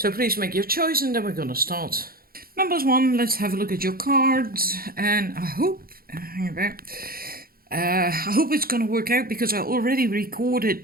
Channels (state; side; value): late; left; 0.43 ms